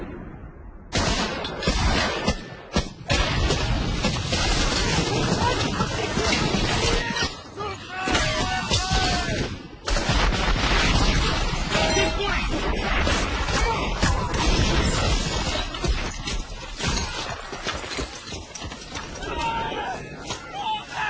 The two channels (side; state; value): both; identical; correlation 1.00